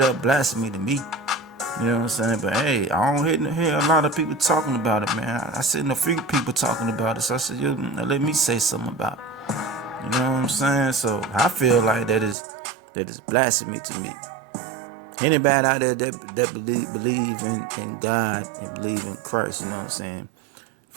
up blasphemy to me. You know what I'm saying? But hey, I don't hear a lot of people talking about it, man. I seen a few people talking about it, so I said, yo, let me say something about it. You know what I'm saying? So I feel like that is blasphemy to me. Anybody out there that believe in God and believe in Christ, you know what I'm saying?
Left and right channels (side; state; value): left; drops out; at 12.4 s